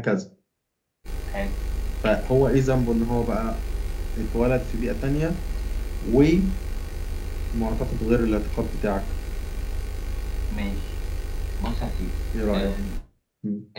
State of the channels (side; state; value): both; identical; correlation 1.00